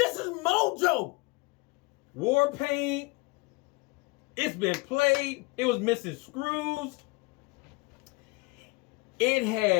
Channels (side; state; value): right; quieter; 25.9 dB